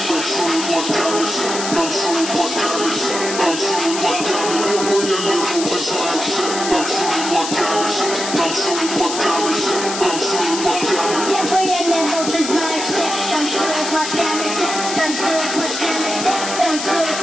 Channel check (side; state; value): left; noise; hiss, 5 dB below the sound